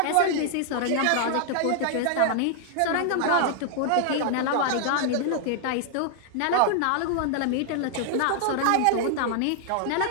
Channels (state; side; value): different; both; correlation 0.00